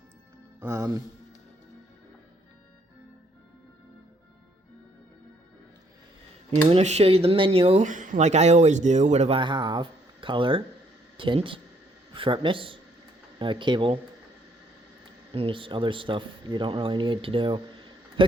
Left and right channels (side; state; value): both; normal; correlation 0.68